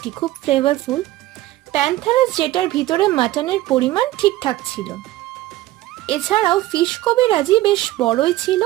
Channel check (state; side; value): quieter; left; 16.0 dB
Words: খুব ফ্লেভারফুল। প্যান্থারাস যেটার ভিতরে মাটনের পরিমাণ ঠিকঠাক ছিল। এছাড়াও ফিশ কবিরাজি বেশ বড়ই ছিল